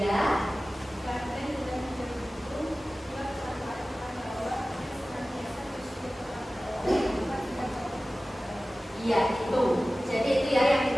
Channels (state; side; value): normal; both; correlation 0.96